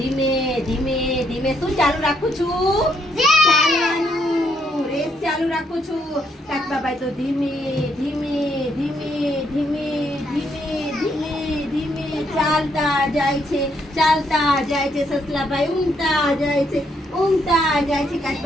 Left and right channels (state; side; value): normal; both; correlation 0.74